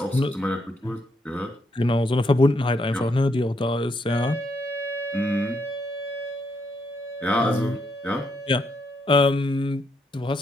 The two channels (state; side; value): normal; both; correlation 0.77